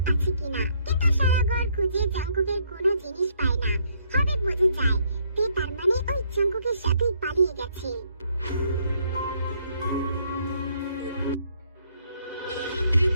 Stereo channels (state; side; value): inverted; both; correlation -0.69